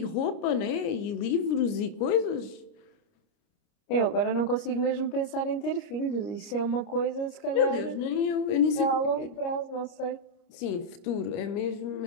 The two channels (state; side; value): late; right; 29 ms